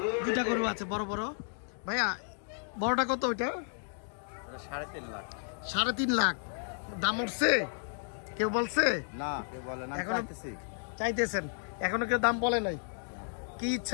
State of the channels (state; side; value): silent; right; digital silence